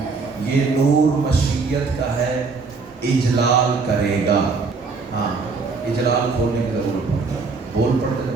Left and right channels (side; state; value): left; quieter; 4.5 dB